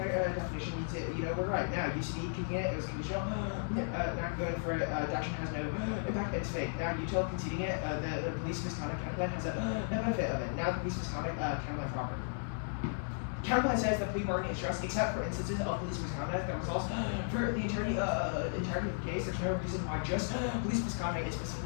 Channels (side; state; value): right; silent; digital silence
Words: means it. We're right. Now UCD kicking it was conditional. Not going for it. Doctrine has no impact. It's fake. Now util conceding it. The police misconduct counterplan has a benefit of it. Now the police misconduct counterplan proper. Counterplan says that plea bargaining is just except for instances of police misconduct that results for the entirety of the case. There's no reason why just police misconduct is